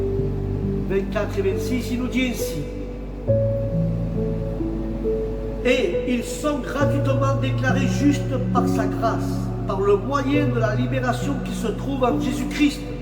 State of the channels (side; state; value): both; identical; correlation 1.00